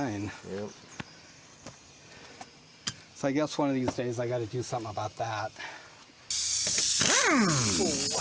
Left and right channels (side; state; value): both; identical; correlation 1.00